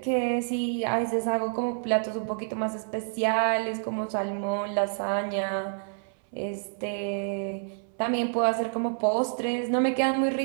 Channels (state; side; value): silent; left; 59 dB below the other